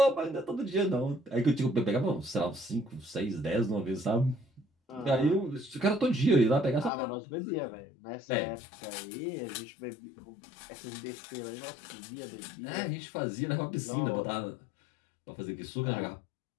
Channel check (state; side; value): drops out; right; at 6.9 s